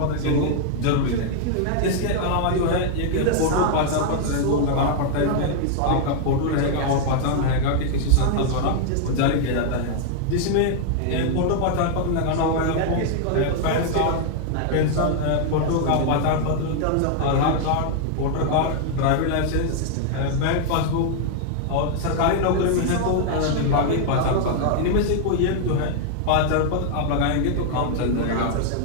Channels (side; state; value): both; different; correlation -0.01